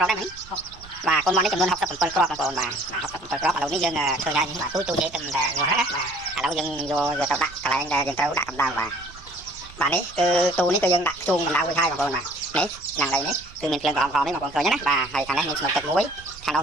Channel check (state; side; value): noise; right; rumble, 20 dB below the sound